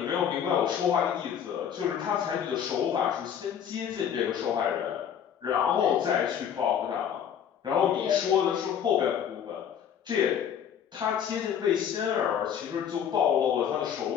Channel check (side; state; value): right; quieter; 8.6 dB